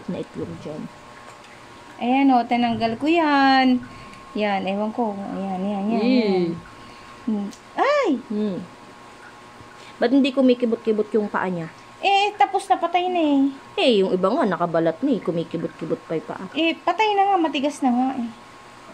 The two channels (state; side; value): identical; both; correlation 1.00